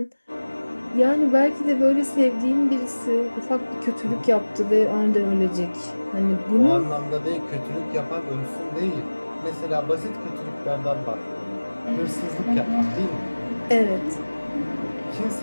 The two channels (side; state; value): both; inverted; correlation -1.00